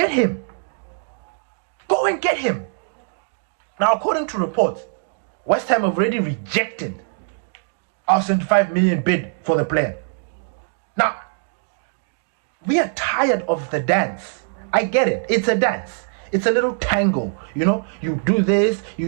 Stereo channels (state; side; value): silent; left; digital silence